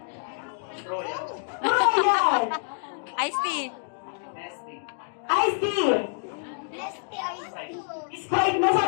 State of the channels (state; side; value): silent; right; digital silence